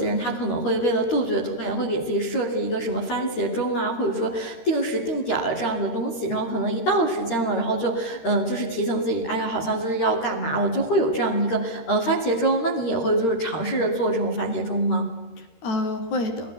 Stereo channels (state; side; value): late; right; 13 ms